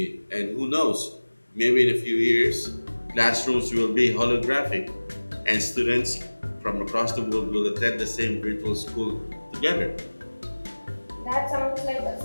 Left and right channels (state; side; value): inverted; both; correlation -1.00